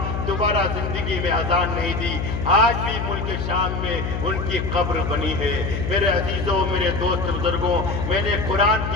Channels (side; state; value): left; noise; hum, 3 dB below the sound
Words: دوبارہ زندگی میں اذان نہیں دی۔ آج بھی ملک شام میں ان کی قبر بنی ہے۔ میرے عزیزوں، میرے دوست بزرگوں، میں نے قرآن